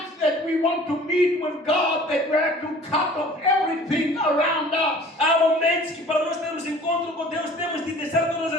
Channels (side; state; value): both; normal; correlation 0.48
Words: that we want to meet with God that we have to cut off everything around us. Há momentos que para nós termos encontro com Deus, temos de deixar todas